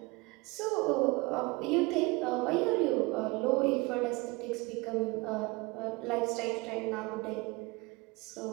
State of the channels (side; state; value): left; quieter; 24.7 dB